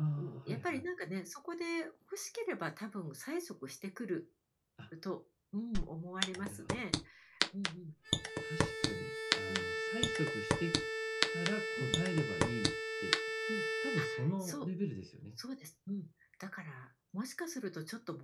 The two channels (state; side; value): identical; both; correlation 1.00